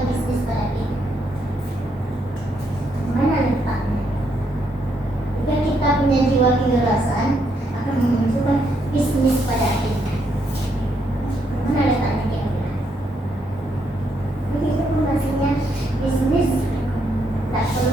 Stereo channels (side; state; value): both; normal; correlation 0.76